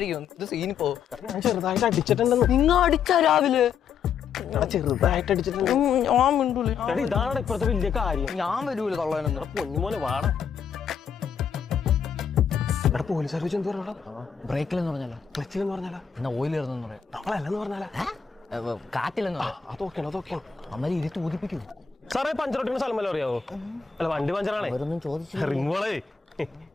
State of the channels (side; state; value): right; quieter; 6.9 dB